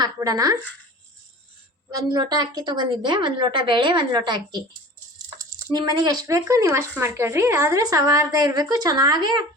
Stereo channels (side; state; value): both; normal; correlation 0.40